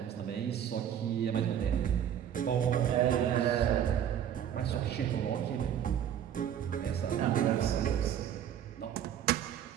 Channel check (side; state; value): left; quieter; 9.6 dB